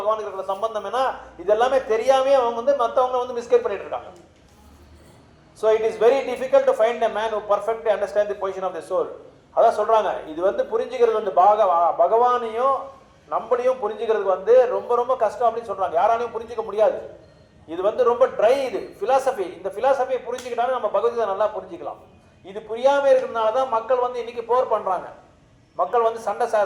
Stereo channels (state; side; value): identical; both; correlation 1.00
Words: இருக்கிற சம்பந்தம் என்ன, இது எல்லாமே தெரியாமே அவங்க வந்து மற்றவங்களை வந்து மிஸ்கைட் பண்ணிட்டு இருக்காங்க. So it is very difficult to find a man who perfectly understands the position of the soul. அதான் சொல்றாங்க, இது வந்து புரிஞ்சுக்கிறது வந்து பகவானையும் நம்மளையும் புரிஞ்சுக்கிறதுக்கு வந்து ரொம்ப ரொம்ப கஷ்டம் அப்படின்னு சொல்றாங்க. யாராலையும் புரிஞ்சிக்க முடியாது. இது வந்து ரொம்ப ட்ரை, இது பிலாசபி. இந்த பிலாசபியை புரிஞ்சுக்கிட்டாலும் நம்ம பகவத்கீதை நல்லா புரிஞ்சுக்கலாம். இது புரியாம இருக்கிறதுனால தான் மக்கள் வந்து இன்னைக்கு போர் பண்றாங்க. மக்கள் வந்து